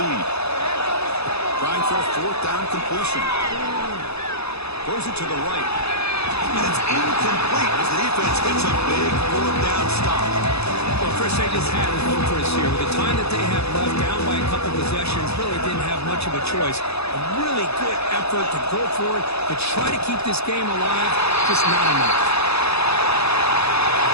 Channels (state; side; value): late; right; 0.79 ms